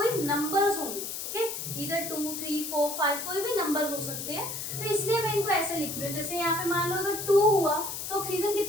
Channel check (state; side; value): noise; left; hiss, 6 dB below the sound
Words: नंबर्स होंगे, ओके, इधर 2 3 4 5 कोई भी नंबर्स हो सकते हैं। तो इसलिए मैं इनको ऐसे लिख रही हूँ। जैसे यहाँ पे मान लो अगर 2 हुआ तो ऑक्सीजन